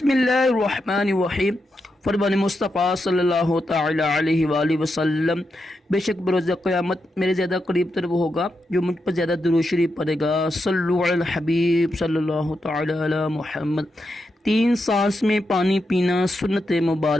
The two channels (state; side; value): normal; both; correlation 0.85